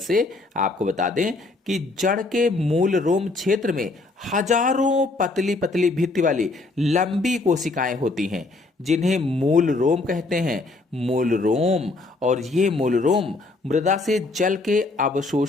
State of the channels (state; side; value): quieter; right; 3.3 dB